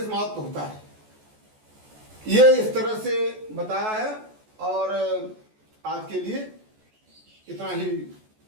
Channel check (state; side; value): late; left; 14 ms